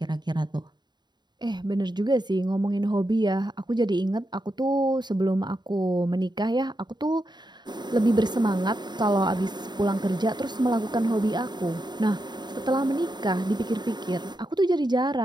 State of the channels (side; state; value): left; late; 0.21 ms